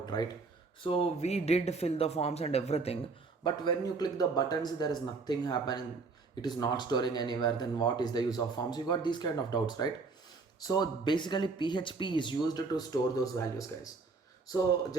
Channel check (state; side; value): quieter; left; 4.3 dB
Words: right? So we did fill the forms and everything, but when you click the buttons, there is nothing happening. It is not storing anywhere. Then what is the use of forms? You got these kind of doubts, right? So basically, PHP is used to store those values, guys. So